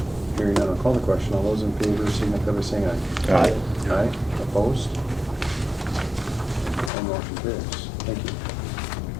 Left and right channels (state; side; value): drops out; right; at 6.9 s